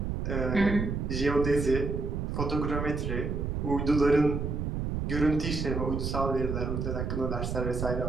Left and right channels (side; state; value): right; noise; rumble, 2 dB below the sound